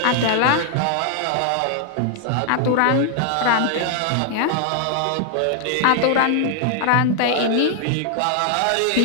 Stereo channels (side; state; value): both; different; correlation 0.00